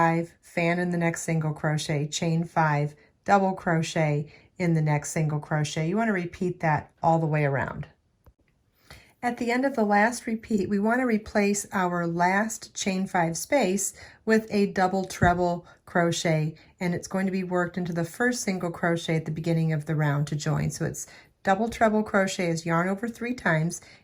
fan in the next single crochet, chain 5, double crochet in the next single crochet. You want to repeat that all the way around. At the end of the last repeat, we want to replace our last chain 5 space with a double treble crochet, and it's going to be worked into the first single crochet at the beginning of the round to join. So it's double treble crochet is yarn over 3 times,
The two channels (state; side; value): identical; both; correlation 1.00